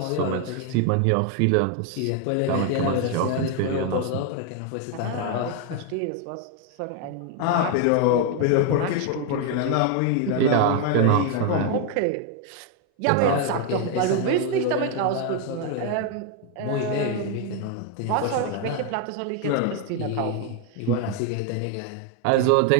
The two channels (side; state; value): both; different; correlation 0.01